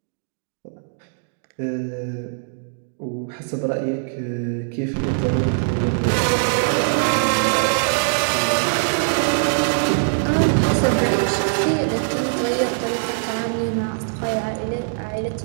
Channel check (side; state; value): left; silent; digital silence